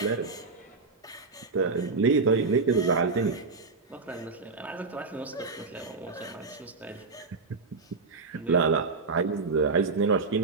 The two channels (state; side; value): quieter; left; 4.2 dB